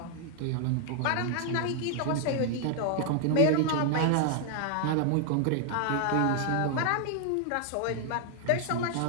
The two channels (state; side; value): different; both; correlation 0.00